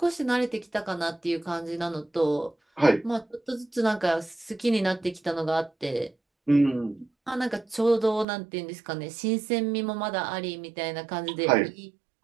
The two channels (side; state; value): left; drops out; at 8.2 s